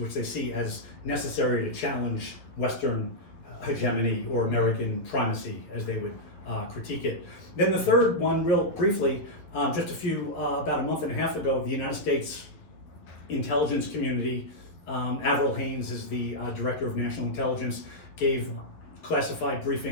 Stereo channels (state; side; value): late; right; 11 ms